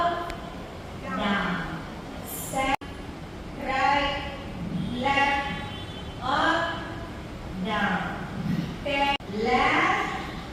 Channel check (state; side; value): identical; both; correlation 1.00